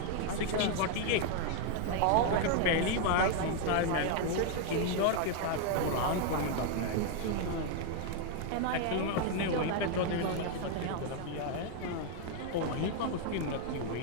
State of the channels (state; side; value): different; both; correlation 0.00